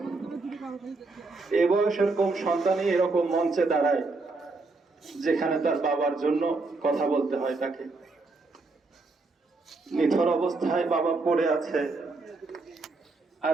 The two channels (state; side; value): quieter; left; 3.6 dB